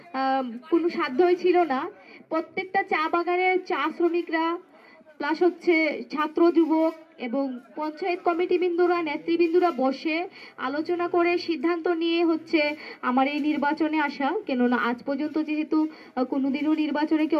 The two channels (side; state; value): both; identical; correlation 1.00